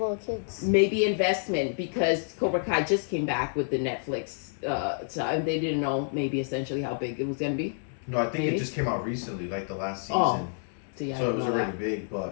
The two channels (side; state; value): right; silent; 58 dB below the other